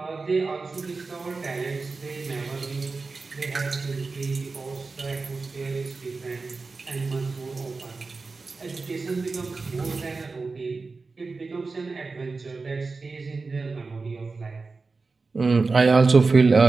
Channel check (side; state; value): left; quieter; 4.1 dB